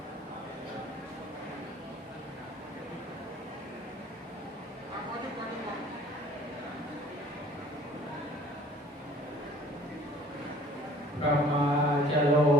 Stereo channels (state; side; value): normal; both; correlation 0.51